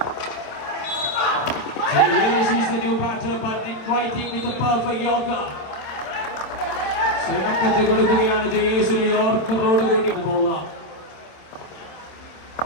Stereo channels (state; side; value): late; right; 27 ms